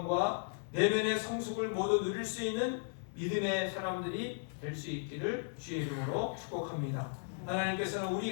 내면의 성숙을 모두 누릴 수 있는 믿음의 사람들이 될 수 있기를 주의 이름으로 축복합니다. 하나님께서는 우리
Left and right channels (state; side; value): silent; right; 54 dB below the other